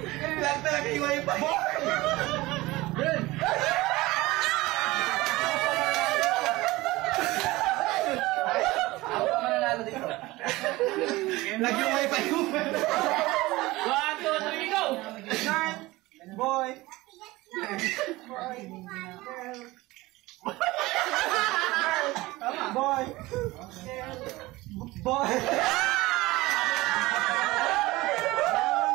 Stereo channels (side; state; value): left; quieter; 19.9 dB